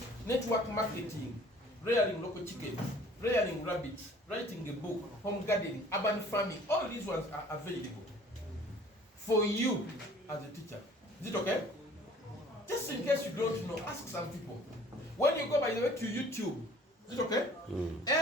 network marketing, rearing local chickens, rearing rabbits, writing a book, home gardening, urban farming. All these ones are available for you as a teacher. Is it okay? Just in case you don't know, ask some people. When you go, by the way, to YouTube, is it okay?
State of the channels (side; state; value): both; normal; correlation 0.52